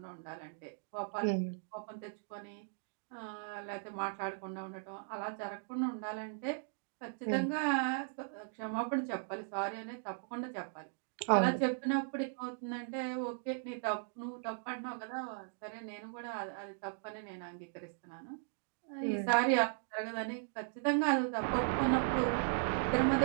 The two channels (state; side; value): silent; left; digital silence